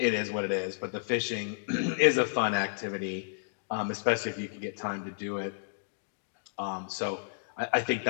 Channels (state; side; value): silent; right; digital silence